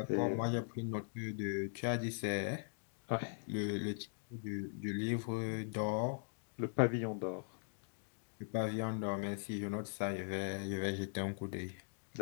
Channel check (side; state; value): right; silent; digital silence